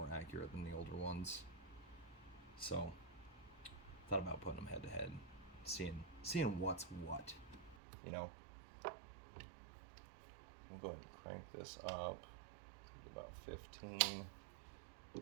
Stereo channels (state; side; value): drops out; left; at 7.8 s